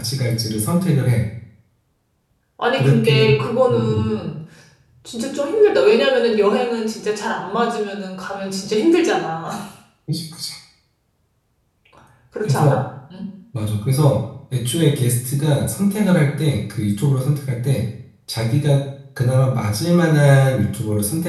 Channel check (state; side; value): identical; both; correlation 1.00